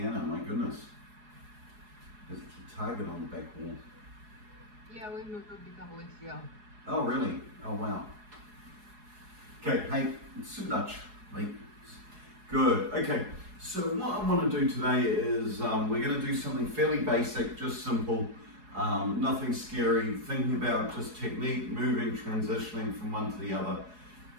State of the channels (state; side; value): late; left; 4.7 ms